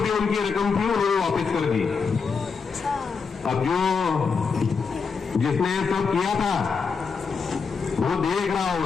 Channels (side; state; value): right; quieter; 5.4 dB